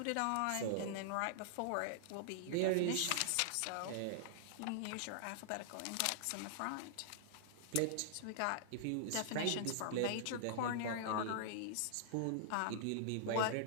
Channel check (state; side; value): different; both; correlation -0.01